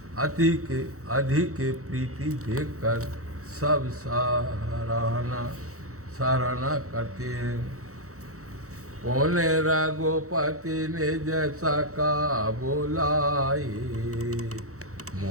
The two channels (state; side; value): late; left; 0.65 ms